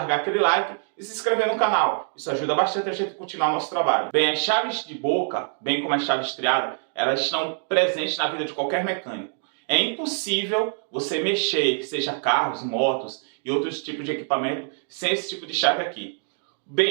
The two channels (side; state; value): left; silent; digital silence